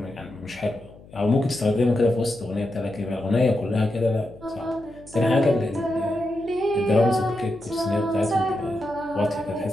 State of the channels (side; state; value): left; noise; hum, 22 dB below the sound